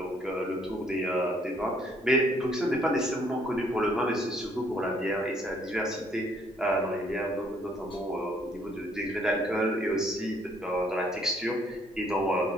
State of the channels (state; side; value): normal; both; correlation 0.65